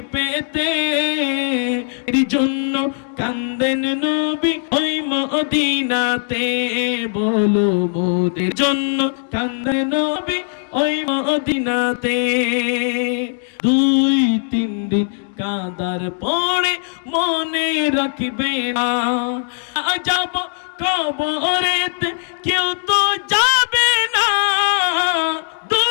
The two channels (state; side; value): silent; right; digital silence